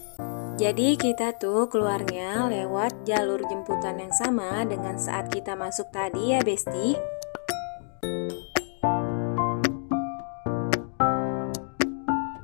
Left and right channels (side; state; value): right; silent; digital silence